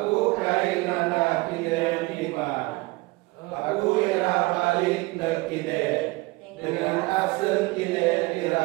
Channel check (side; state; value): left; quieter; 23.1 dB